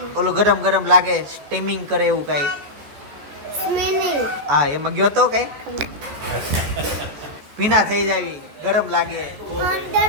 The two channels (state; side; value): late; left; 14 ms